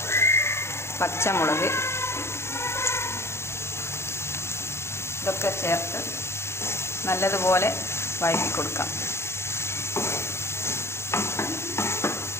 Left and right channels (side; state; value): right; late; 0.13 ms